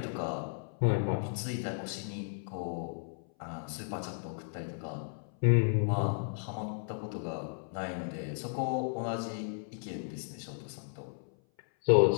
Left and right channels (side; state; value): right; silent; 55 dB below the other